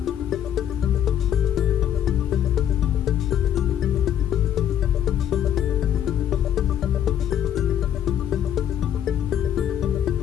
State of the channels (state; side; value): quieter; right; 10.0 dB